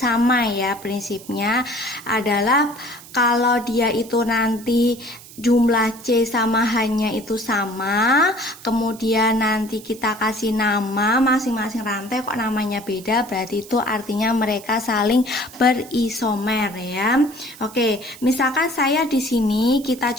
ya. Prinsipnya adalah kalau dia itu nanti jumlah C sama H-nya itu sama, kemudian nanti kita kasih nama masing-masing rantai kok namanya beda, berarti itu artinya mereka saling berisomer ya. Oke, misalkan saya di sini kita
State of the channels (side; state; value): right; noise; hiss, 19 dB below the sound